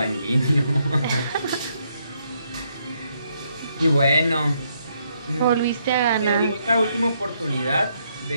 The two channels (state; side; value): inverted; both; correlation -0.75